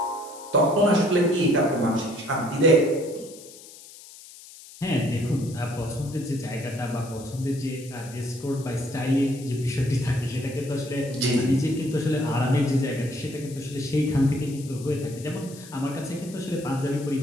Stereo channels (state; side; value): noise; left; hiss, 18 dB below the sound